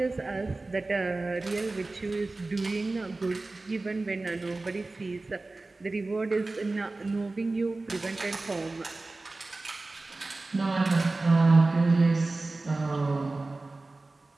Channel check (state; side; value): quieter; left; 3.3 dB